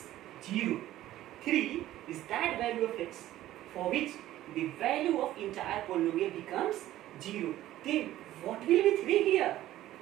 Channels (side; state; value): left; quieter; 14.2 dB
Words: 0. 3 is that value of x for which the value of entire polynomial becomes 0. Then what will be 3 here?